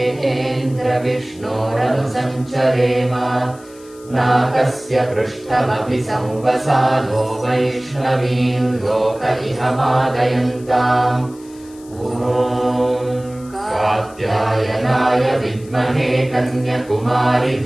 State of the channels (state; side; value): noise; left; hiss, 24 dB below the sound